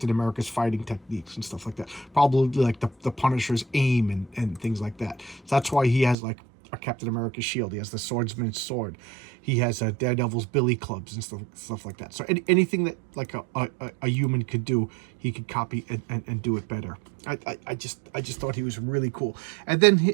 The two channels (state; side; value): drops out; left; at 6.2 s